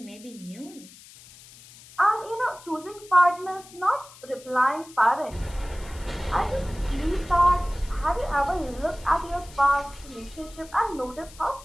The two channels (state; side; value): noise; left; hiss, 20 dB below the sound